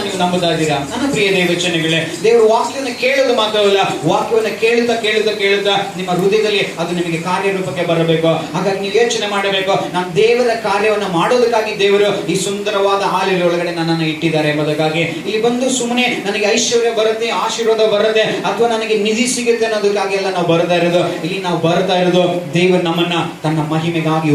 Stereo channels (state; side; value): identical; both; correlation 1.00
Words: ನೀವು ನಂಬುತ್ತಾ ಇದ್ದೀರಾ? ನನ್ನ ಪ್ರಿಯ ದೇವಚನಗಳೇ, ದೇವರ ವಾಕ್ಯವನ್ನು ಕೇಳೋದು ಮಾತ್ರವಲ್ಲ, ವಾಕ್ಯವನ್ನು ಕೇಳುತ್ತಾ ನಿಮ್ಮ ಹೃದಯದಲ್ಲಿ ಅದು ನಿಮಗೆ ಕಾರ್ಯರೂಪಕ್ಕೆ ಬರಬೇಕು. ಹಾಗಾಗಿ ನೀವು ಯೋಚನೆ ಮಾಡಬೇಕು, ನಾನು ದೇವರ ಕಾರ್ಯವನ್ನು ಮಾಡೋದಕ್ಕಾಗಿ ದೇವರು ಈ ಸುಂದರವಾದ ಹಾಲಿನ ಒಳಗಡೆ ನನ್ನನ್ನು ಇಟ್ಟಿದ್ದಾರೆ ಎಂಬುದಕ್ಕಾಗಿ. ಇಲ್ಲಿ ಬಂದು ಸುಮ್ಮನೆ ನನಗೆ ಐಶ್ವರ್ಯ ಬರುತ್ತೆ, ಆಶೀರ್ವಾದ ಬರುತ್ತೆ, ಅಥವಾ ನನಗೆ ನಿಧಿ ಸಿಗುತ್ತೆ ಅನ್ನೋದಕ್ಕಾಗಿ ಎಲ್ಲ ನಾವು ಬರ್ತಾ ಇರೋದು. ಇಲ್ಲಿ ನಾವು ಬರ್ತಾ ಇರೋದು ದೇವರು ನಮ್ಮನ್ನ ತನ್ನ ಮಹಿಮೆಗಾಗಿ